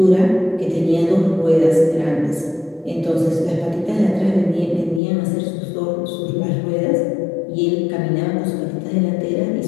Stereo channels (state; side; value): drops out; right; at 5.0 s